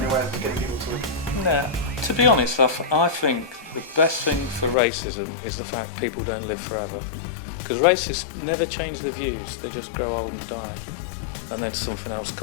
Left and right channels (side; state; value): right; drops out; at 4.8 s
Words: awareness and getting people to? No, to be honest, I think the best thing for racism is the fact people don't live forever. Because racists never change their views, they just grow old and die. And then something else